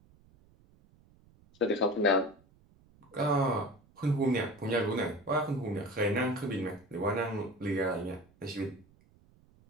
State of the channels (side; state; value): right; noise; rumble, 29 dB below the sound